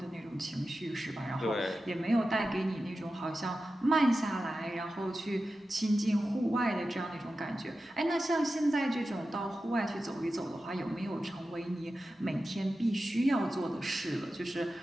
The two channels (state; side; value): normal; both; correlation 0.93